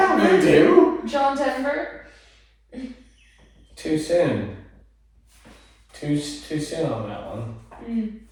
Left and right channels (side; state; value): both; identical; correlation 1.00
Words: we do. John Denver. Too soon. Too soon on that one.